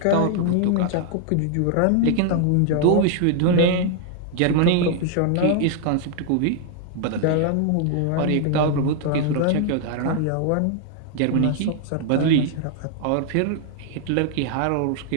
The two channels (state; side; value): different; both; correlation 0.00